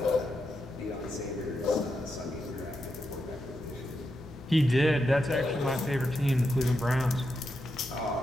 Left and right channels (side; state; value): both; normal; correlation 0.85